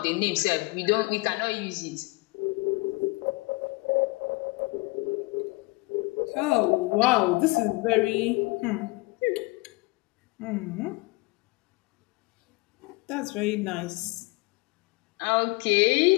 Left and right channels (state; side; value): quieter; right; 24.4 dB